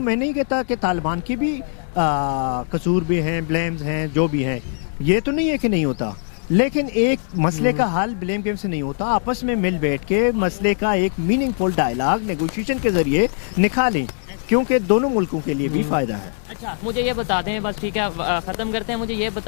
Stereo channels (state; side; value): silent; right; digital silence